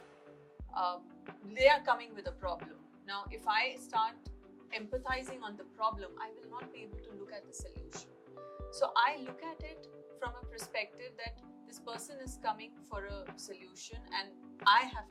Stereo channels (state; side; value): identical; both; correlation 1.00